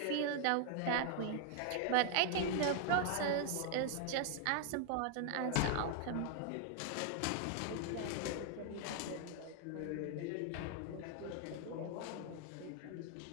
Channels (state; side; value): different; both; correlation 0.00